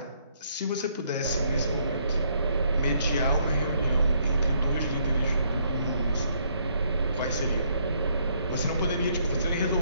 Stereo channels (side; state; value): both; inverted; correlation -0.69